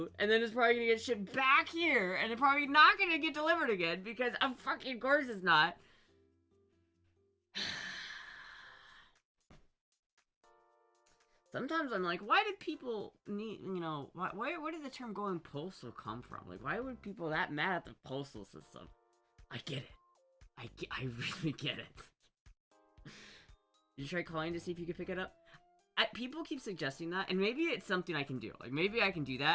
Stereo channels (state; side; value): identical; both; correlation 1.00